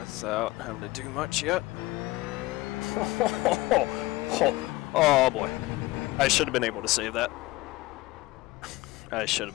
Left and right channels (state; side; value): quieter; right; 19.7 dB